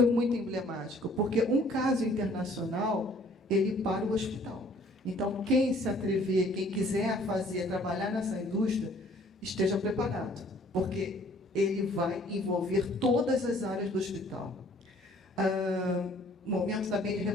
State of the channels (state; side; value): normal; both; correlation 0.57